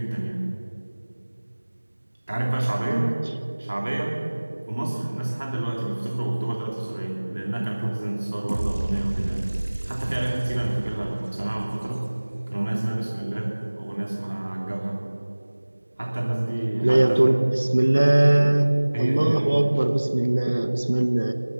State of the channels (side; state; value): both; inverted; correlation -1.00